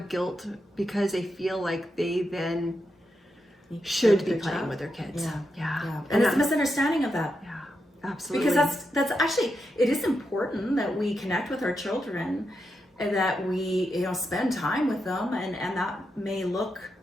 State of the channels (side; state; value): both; normal; correlation 0.85